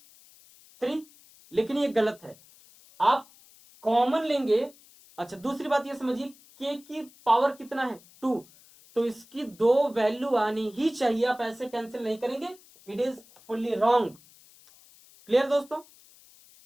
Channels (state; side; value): noise; left; hiss, 25 dB below the sound